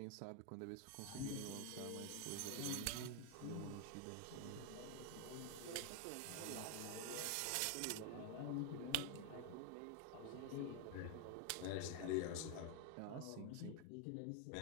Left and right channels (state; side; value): different; both; correlation 0.01